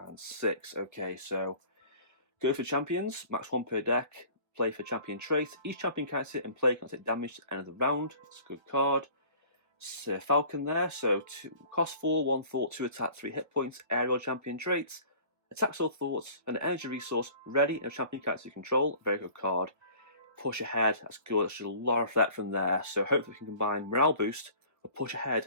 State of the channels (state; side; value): late; left; 1.4 ms